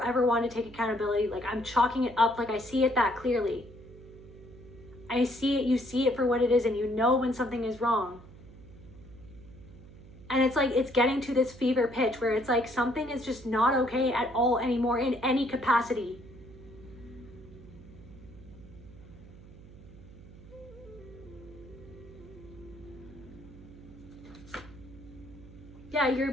ever want to take accountability. Like, I'm chalking it up, like I see it that clearly. I see it, you see it for what it is, and you know when something is wrong. And it's like, it's getting to this fever pitch where it's like something is just not okay at all anymore in any capacity. Yeah, you're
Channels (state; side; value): noise; right; hum, 19 dB below the sound